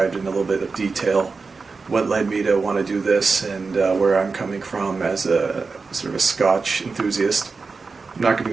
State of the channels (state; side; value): quieter; left; 4.4 dB